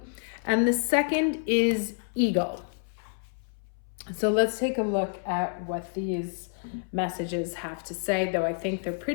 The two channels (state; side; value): silent; right; 59 dB below the other